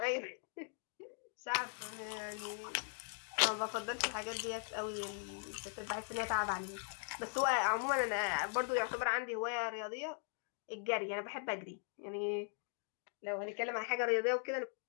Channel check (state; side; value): silent; right; 51 dB below the other